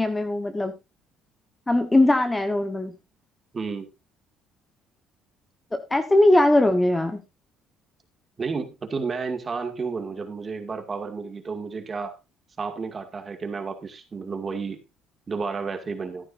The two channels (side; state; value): both; normal; correlation 0.93